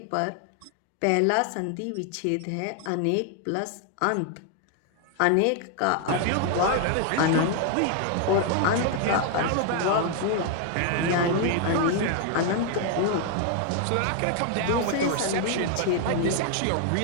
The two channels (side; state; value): both; different; correlation 0.00